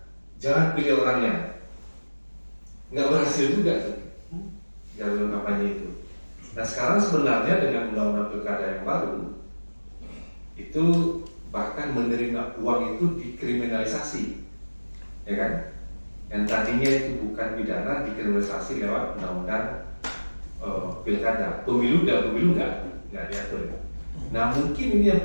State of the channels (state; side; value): inverted; both; correlation -1.00